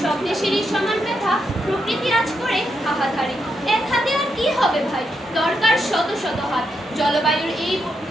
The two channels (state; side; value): normal; both; correlation 0.82